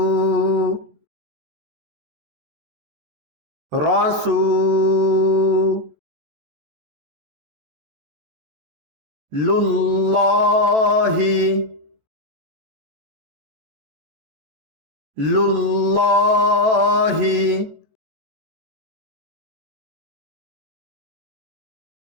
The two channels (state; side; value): late; left; 14 ms